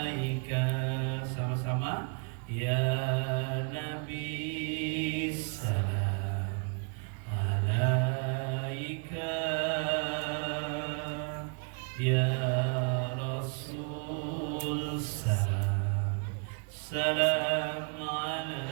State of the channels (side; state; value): left; quieter; 39.5 dB